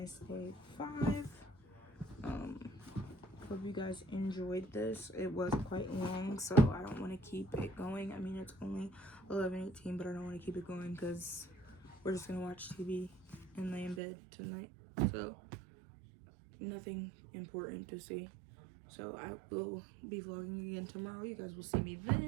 Day 5. Hope you guys enjoyed this. It was quite long, so I don't want to keep it going. I mean, it's only 11:18, but I don't want to keep it going because we're just gonna watch TV and lay in bed tonight. So nothing important to see. So I will be vlogging again tomorrow. You guys will see me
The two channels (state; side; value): drops out; left; at 14.0 s